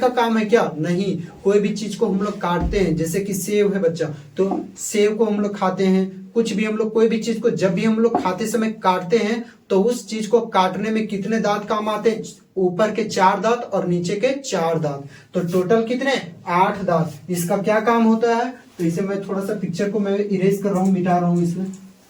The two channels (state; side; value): identical; both; correlation 1.00